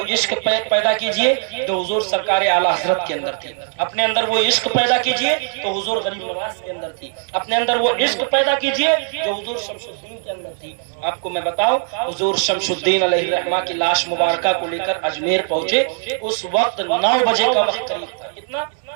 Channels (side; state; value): left; silent; 60 dB below the other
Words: عشق پیدا کیجئے جو حضور سرکار اعلی حضرت کے اندر تھی. اپنے اندر وہ عشق پیدا کیجئے تو حضور غریب نواز کے اندر تھی. اپنے اندر وہ عشق پیدا کیجئے جو حضور شمس الدین کے اندر تھی. آپ کو میں بتاؤں، حضور شمس الدین علیہ الرحمہ کی لاش مبارکہ کو لے کر اجمیر پہنچے. اس وقت 9 بجے کا وقت قریب تھا. کتنا